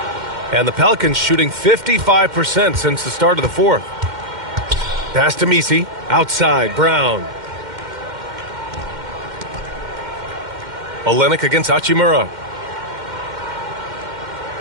And the Pelicans shooting 55% since the start of the fourth. Pass to Misi. Outside, Brown. Olynyk against Hachimura.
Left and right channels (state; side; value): late; left; 2.1 ms